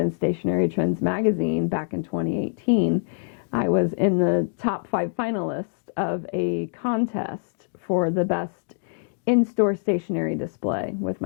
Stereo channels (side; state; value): right; silent; digital silence